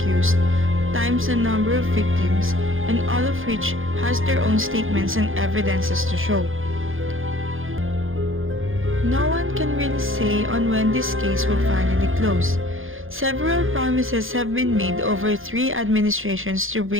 times the number of victims, and all of which has their own statements and evidences to show. No one can really say on when this case would finally close. Several promises have been made over 3 administrations to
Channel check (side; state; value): left; late; 0.59 ms